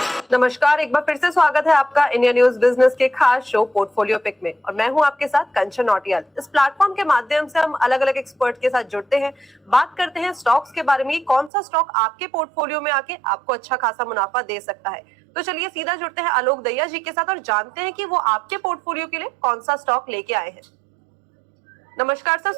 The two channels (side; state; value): left; drops out; at 11.5 s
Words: नमस्कार, एक बार फिर से स्वागत है आपका इंडिया न्यूज बिजनेस के खास शो पोर्टफोलियो पिक में। और मैं हूं आपके साथ कंचन नौटियाल। इस प्लेटफॉर्म के माध्यम से हम अलग अलग एक्सपर्ट के साथ जुड़ते हैं, बात करते हैं स्टॉक्स के बारे में, कौन सा स्टॉक आपके पोर्टफोलियो में आके आपको अच्छा खासा मुनाफा दे सकता है। तो चलिए सीधा जुड़ते हैं आलोक दहिया जी के साथ और जानते हैं कि वो आपके पोर्टफोलियो के लिए कौन सा स्टॉक लेके आए हैं। नमस्कार सर,